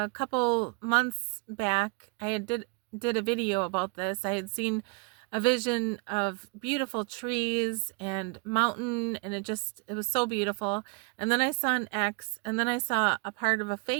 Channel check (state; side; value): quieter; left; 31.8 dB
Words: couple months back, I did a video about this. I had seen a vision of beautiful trees and mountain, and it was so beautiful. And then I saw an X, and then I saw a part of a